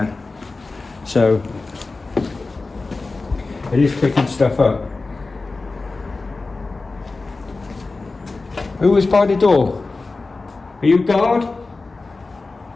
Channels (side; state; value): right; quieter; 3.6 dB